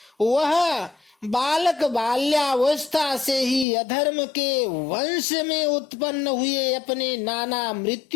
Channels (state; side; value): drops out; right; at 3.7 s